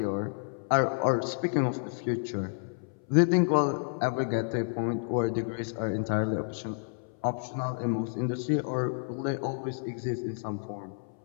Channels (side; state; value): right; silent; 58 dB below the other